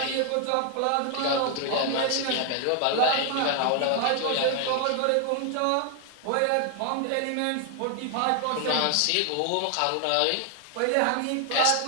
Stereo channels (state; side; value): different; both; correlation 0.00